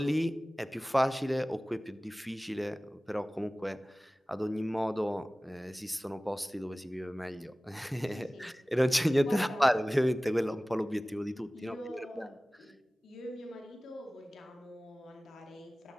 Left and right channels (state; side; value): normal; both; correlation 0.98